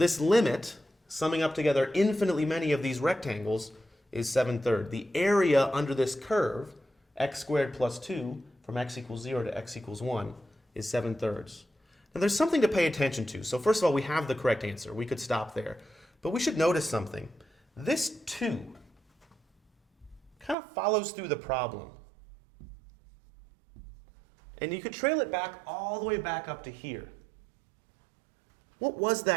limit, summing up together infinitely many of these rectangles, is 7/3. The area under this curve, x squared plus 2, from x equals 0 to x equals 1, is 7/3. Now there's something to pay attention to. So first of all, we have the correct answer. We could stop there. But we should notice something. This 2 kind of follows through the problem. And you could trail it back all the way back up to here. What was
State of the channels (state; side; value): drops out; left; at 20.6 s